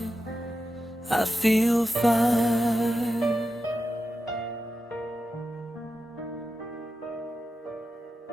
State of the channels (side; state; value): both; normal; correlation 0.90